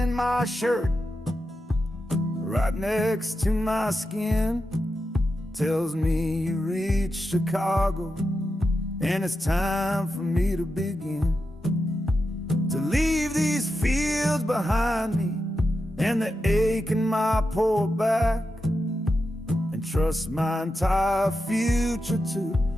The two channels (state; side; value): normal; both; correlation 0.89